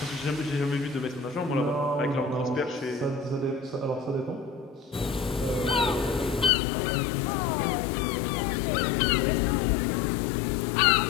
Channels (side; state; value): right; drops out; at 6.5 s